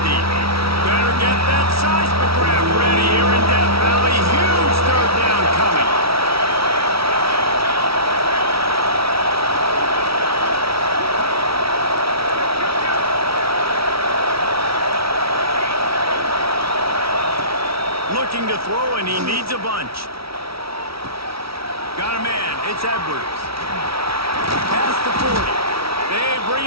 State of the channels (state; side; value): late; left; 0.76 ms